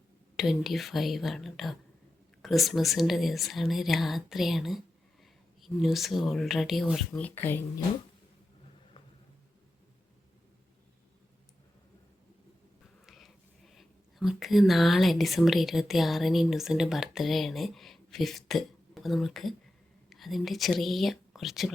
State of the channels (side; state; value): both; normal; correlation 0.91